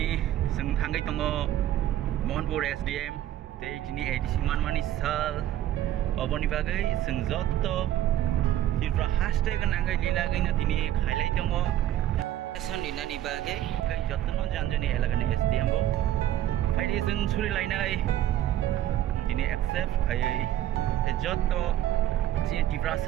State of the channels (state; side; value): quieter; left; 12.3 dB